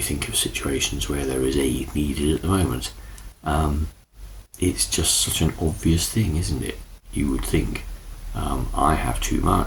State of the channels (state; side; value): identical; both; correlation 1.00